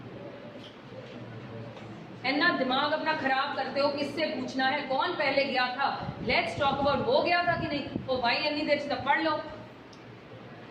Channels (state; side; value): identical; both; correlation 1.00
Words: ना दिमाग अपना खराब करते हो, किससे पूछना है, कौन पहले गया था, लेट्स टॉक अबाउट वो गया था कि नहीं, तो भाई इतनी देर से पढ़ लो।